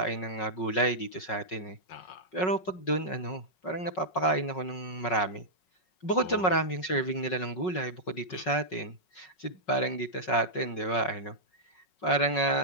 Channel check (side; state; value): right; late; 5.4 ms